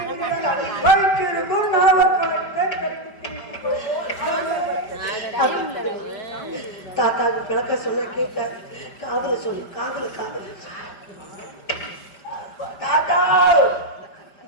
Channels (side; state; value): right; late; 5.0 ms